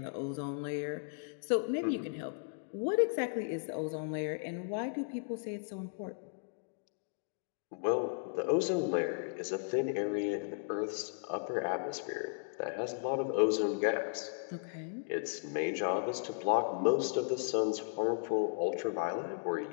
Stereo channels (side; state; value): right; silent; digital silence